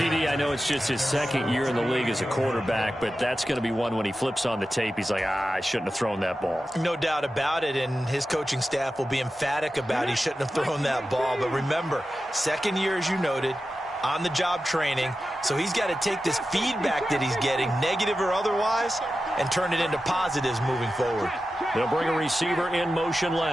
I know it's just his second year in the league as a quarterback, but that's going to be one when he flips on the tape, he's like, I shouldn't have thrown that ball. No doubt about it, and his coaching staff will be emphatic about he shouldn't have thrown that ball. But remember, second year, as you noted, on-the-job training, so he's got to take this feedback that he's getting, negative or otherwise, and turn it into positives moving forward. They'll bring a receiver in motion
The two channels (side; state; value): both; normal; correlation 0.92